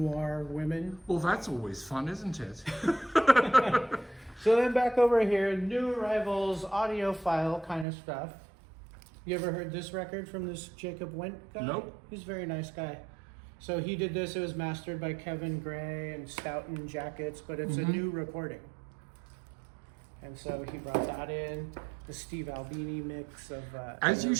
women. Well, that's always fun, isn't it? So then back over here, New Arrivals, audiophile kind of stuff. You ever heard this record from this Jacob Went guy? Nope. He's a very nice guy. So he did this, it was mastered by Kevin Gray and Stoughton Jackets, but it's a new recording. And so he brought that in, the Steve Albini mix of As you Nirvana.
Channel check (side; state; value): left; drops out; at 7.9 s